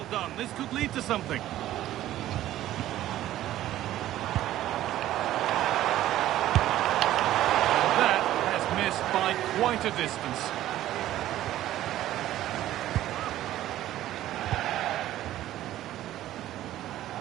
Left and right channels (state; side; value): quieter; left; 13.7 dB